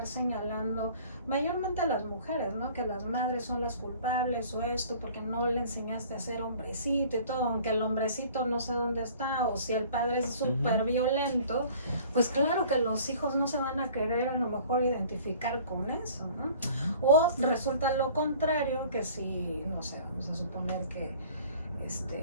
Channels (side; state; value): both; inverted; correlation -0.49